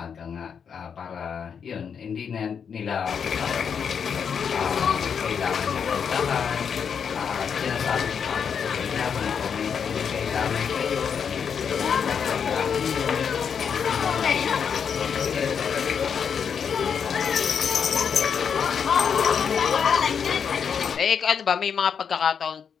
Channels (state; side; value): quieter; right; 7.0 dB